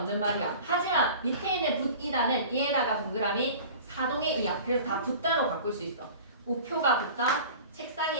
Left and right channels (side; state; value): both; inverted; correlation -0.40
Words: 말이야. 하지만 밑에 있는 붙이다는 이에다가 동그라미 사동의 이야. 그래서 다 붙다로 바꿀 수 있어. 우표가 붙다,